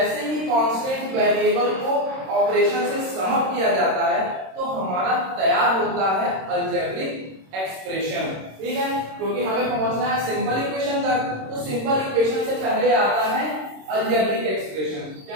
ही कांस्टेंट वेरिएबल को ऑपरेशन से समअप किया जाता है तो हमारा तैयार होता है अलजेब्रिक एक्सप्रेशन। ठीक है, क्योंकि हमें पहुंचना है सिंपल इक्वेशन तक, तो सिंपल इक्वेशन से पहले आता है अलजेब्रिक एक्सप्रेशन। क्या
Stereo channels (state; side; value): late; left; 26 ms